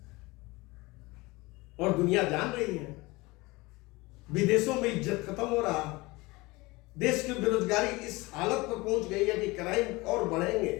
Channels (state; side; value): quieter; right; 22.7 dB